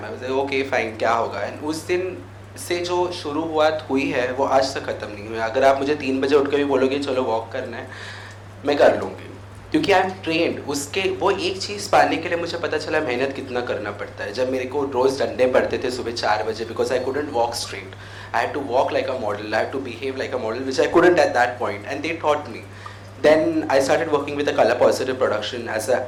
I was like okay fine, क्या होगा. And उस दिन से जो शुरुआत हुई है वो आज तक ख़त्म नहीं हुई. अगर आप मुझे 3 बजे उठ के भी बोलोगे चलो वॉक करना है, मैं कर लूँगी, क्योंकि आई एम ट्रेंड. उसके वो एक चीज़ पाने के लिए मुझे पता चला मेहनत कितना करना पड़ता है. जब मेरे को रोज़ डंडे पड़ते थे सुबह 4 बजे, because I couldn't walk straight, I had to walk like a model, I had to behave like a model, which I couldn't at that point, and they taught me. Then I started working with a Color Positive production as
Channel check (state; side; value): identical; both; correlation 1.00